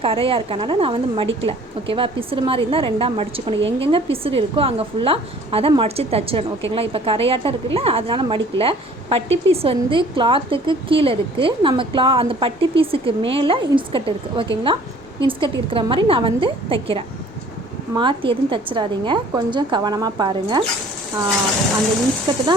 கரையாக இருக்கனால நான் வந்து மடிக்கலை. ஓகேவா? பிசுறு மாதிரி இருந்தால் 2ஆக மடிச்சுக்கணும். எங்கெங்கே பிசுறு இருக்கோ அங்கே ஃபுல்லாக அதை மடித்து தச்சிடணும். ஓகேங்களா? இப்போ கரையாட்டம் இருக்குல்ல, அதனால் மடிக்கலை. பட்டி பீஸ் வந்து கிளாத்துக்கு கீழே இருக்குது, நம்ம அந்த பட்டி பீஸுக்கு மேலே இன்ஸ்கர்ட் இருக்குது. ஓகேங்களா? இன்ஸ்கர்ட் இருக்கிற மாதிரி நான் வந்து தைக்கிறேன். மாற்றி எதுவும் தைச்சிடாதீங்க, கொஞ்சம் கவனமாக பாருங்கள். அந்த இன்ஸ்கர்ட்டு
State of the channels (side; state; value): both; normal; correlation 0.52